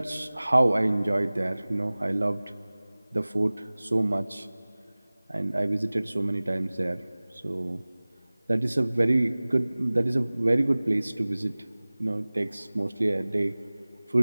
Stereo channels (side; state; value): both; inverted; correlation -0.99